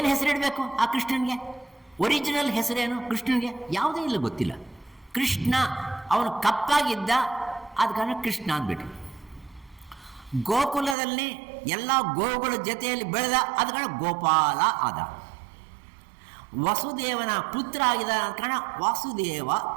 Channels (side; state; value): left; drops out; at 11.0 s